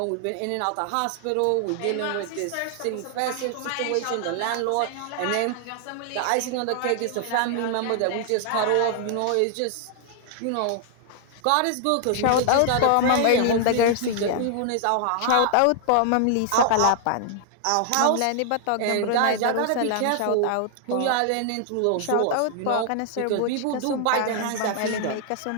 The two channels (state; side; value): different; both; correlation 0.00